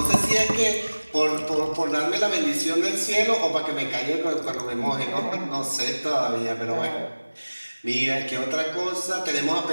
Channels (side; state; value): both; inverted; correlation -1.00